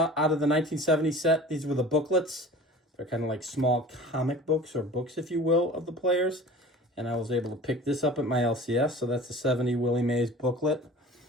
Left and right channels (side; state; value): both; normal; correlation 0.40